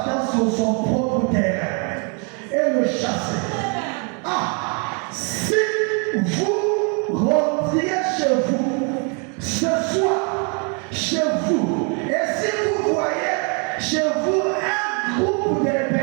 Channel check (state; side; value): quieter; left; 36.6 dB